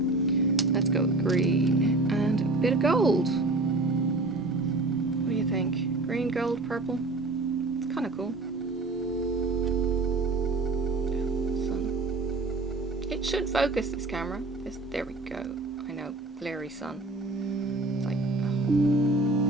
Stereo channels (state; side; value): quieter; left; 3.2 dB